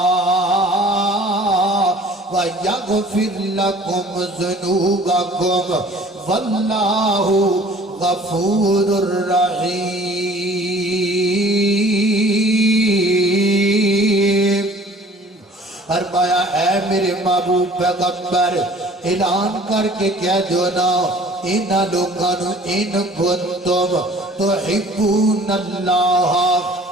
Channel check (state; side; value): normal; both; correlation 0.50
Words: وَيَغْفِرْ لَكُمْ ذُنُوبَكُمْ وَاللَّهُ غَفُورٌ رَحِيمٌ۔ اے میرے محبوب پیغمبر اعلان کر کے کہہ دو نا انہاں لوگاں نو ان کنتم تحبون اللہ